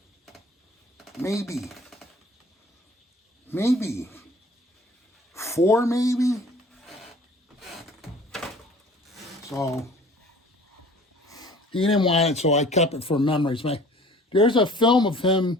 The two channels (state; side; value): normal; both; correlation 0.49